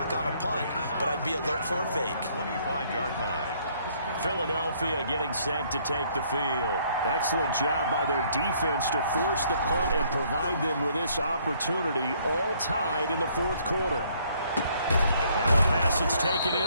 on a punt, but I'd be alert for a fake. 25-yard line. Philadelphia getting set to take the field. Excellent job by their defense to force the punt and provide them with this opportunity, all tied in the 4th quarter. Now a pass that's taken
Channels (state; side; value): inverted; both; correlation -0.65